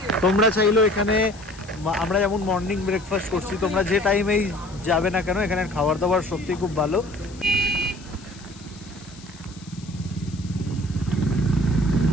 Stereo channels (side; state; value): left; noise; hiss, 22 dB below the sound